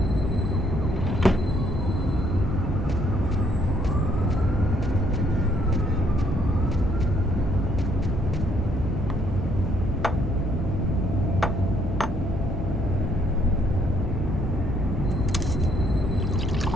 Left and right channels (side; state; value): both; normal; correlation 0.68